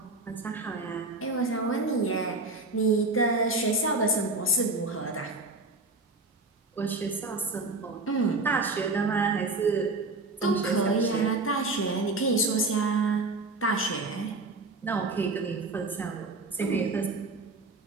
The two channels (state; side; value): quieter; left; 3.2 dB